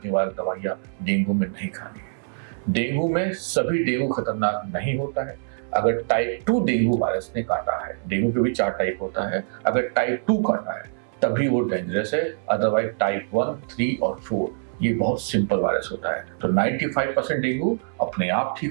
निवारक दवाइयां डेंगू में नहीं खानी है। डेंगू में सभी डेंगू खतरनाक नहीं होता है। अगर टाइप 2 डेंगू वायरस ने काटा है, डेंगू के भी 4 टाइप होता है, अगर टाइप 2 काटा है तभी वो डेंजरस है। अदरवाइज टाइप 1, 3 और 4 ये बहुत सिंपल वायरस होता है। तो 95% डेंगू अपने आप ठीक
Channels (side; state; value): left; silent; 62 dB below the other